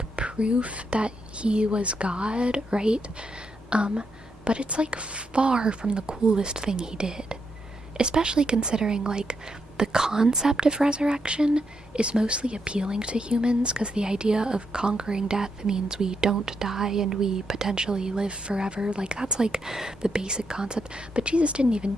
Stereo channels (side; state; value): both; normal; correlation 0.80